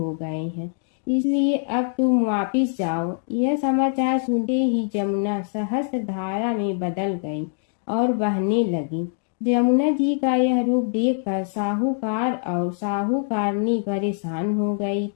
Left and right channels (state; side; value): silent; right; 63 dB below the other